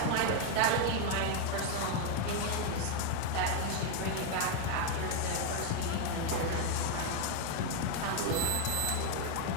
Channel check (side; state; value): both; different; correlation 0.01